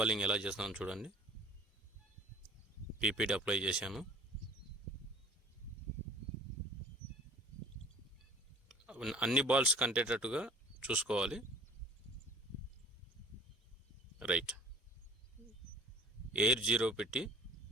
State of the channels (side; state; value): both; normal; correlation 0.50